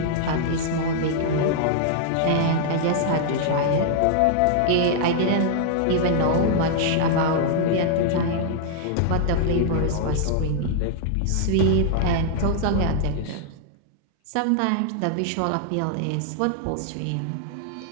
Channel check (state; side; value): different; both; correlation -0.01